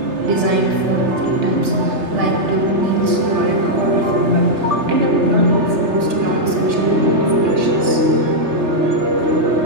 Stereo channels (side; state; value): left; late; 3.3 ms